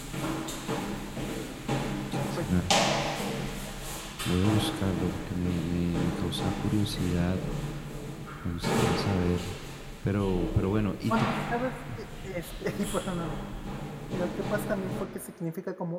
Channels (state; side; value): identical; both; correlation 1.00